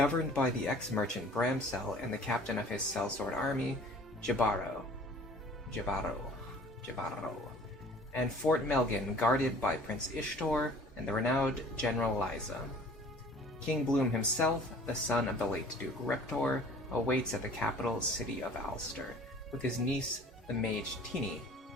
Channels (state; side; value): normal; both; correlation 0.49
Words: by the ex-merchant Bramsel and the captain of his sellsword army, Jabaro, and Fort Melgan, guarded by Prince Ishtor and the renowned General Liza. King Bloom himself, the son of the late Duke Reptor, awaits at the capital city of Ulster, with his niece, the mage Tini.